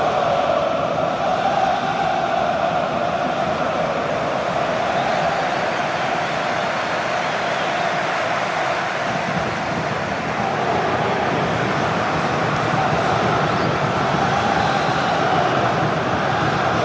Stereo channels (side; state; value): both; identical; correlation 1.00